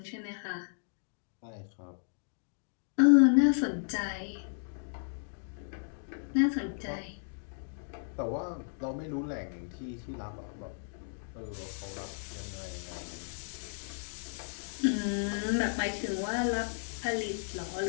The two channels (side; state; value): right; silent; digital silence